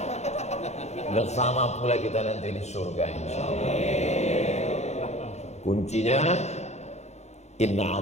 Bersama pula kita nanti di surga, insyaallah. Kuncinya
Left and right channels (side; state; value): right; late; 0.32 ms